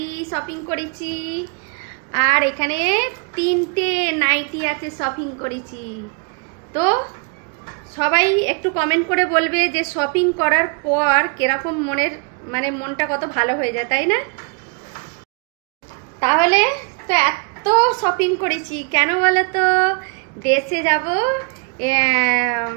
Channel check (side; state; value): left; quieter; 35.7 dB